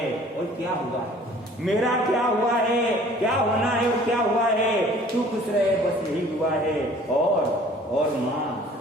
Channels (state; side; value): normal; both; correlation 0.52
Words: और क्या हुआ है, मेरा क्या हुआ है, क्या होना है और क्या हुआ है, तू खुश रहे बस यही हुआ है। और माँ